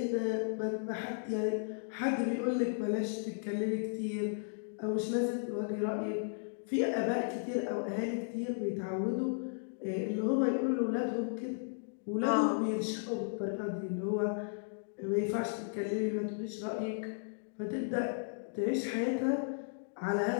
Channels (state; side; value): silent; right; digital silence